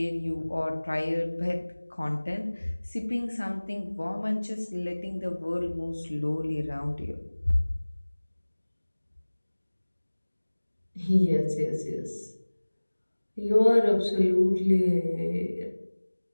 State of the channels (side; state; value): both; inverted; correlation -1.00